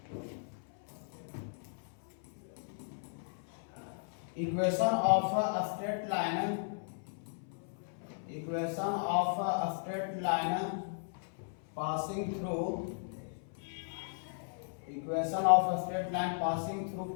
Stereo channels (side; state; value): right; silent; 54 dB below the other